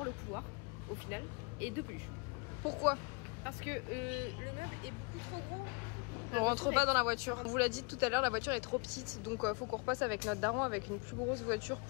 le couloir, au final, et deux peluches. Pourquoi? Parce que le meuble est beaucoup trop gros. On rentre pas dans la voiture. On vous l'a dit tout à l'heure, la voiture est trop petite. Donc faut qu'on repasse avec notre daron avec une plus grosse voiture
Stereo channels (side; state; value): right; quieter; 31.5 dB